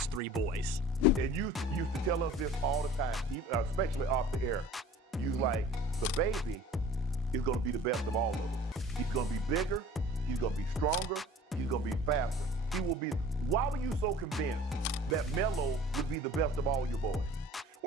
three boys. And you used to tell us this all the time, especially off the air. You like, the baby is going to be the best of all of them. He's going to be bigger, he's going to be stronger, he's going to be faster. He will be. Why were you so convinced that Melo would be the best of all your boys?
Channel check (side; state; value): both; normal; correlation 0.46